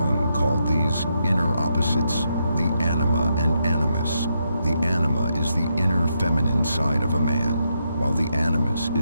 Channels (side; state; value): both; inverted; correlation -0.81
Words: called these inner opposites the anima and animus. The anima is the inner feminine side of a man, while the animus